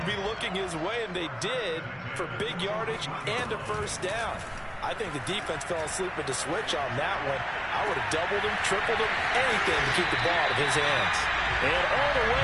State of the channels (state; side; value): identical; both; correlation 1.00